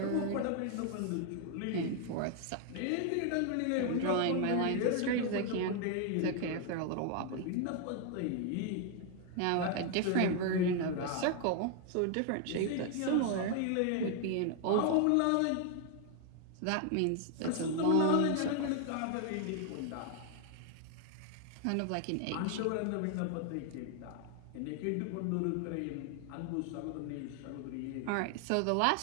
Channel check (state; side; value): different; both; correlation 0.00